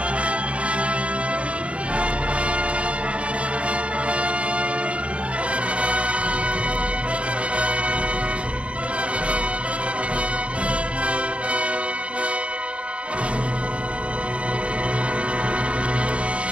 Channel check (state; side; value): late; left; 0.062 ms